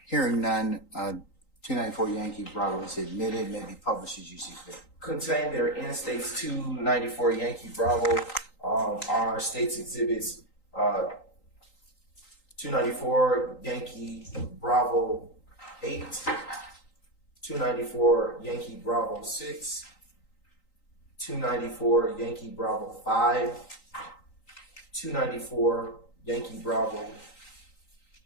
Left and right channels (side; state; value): right; late; 3.9 ms